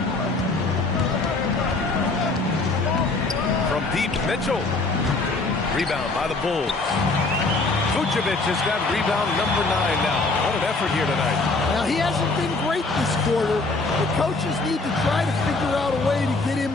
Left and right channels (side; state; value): right; quieter; 3.4 dB